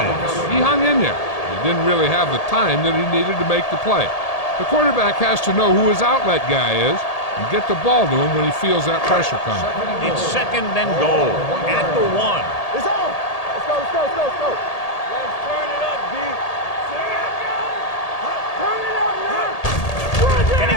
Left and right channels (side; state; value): right; late; 1.8 ms